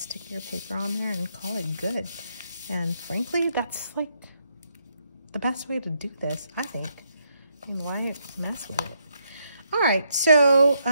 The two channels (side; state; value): both; inverted; correlation -0.77